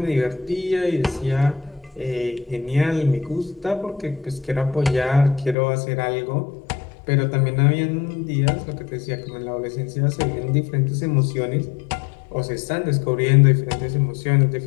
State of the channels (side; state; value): right; drops out; at 5.6 s